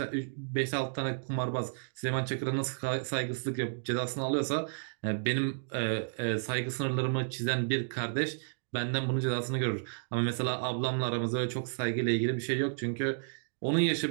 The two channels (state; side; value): silent; left; digital silence